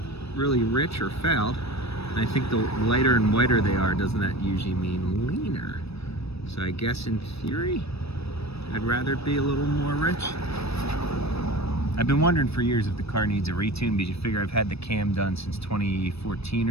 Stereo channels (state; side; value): late; right; 0.78 ms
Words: really rich or fouled. And I think the lighter and whiter they are, doesn't that usually mean leaner? So I guess in theory, I'd rather it be a little more rich. I've been wondering for years if the car needs a retune, because you figure I've had the cam done since 2014